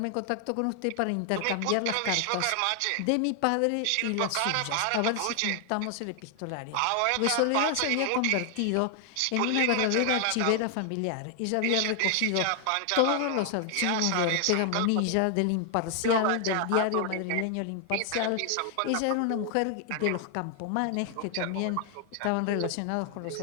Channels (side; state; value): both; different; correlation 0.00